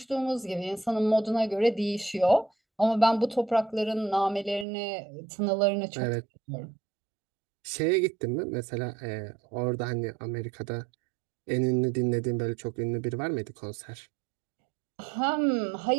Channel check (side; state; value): left; drops out; at 4.7 s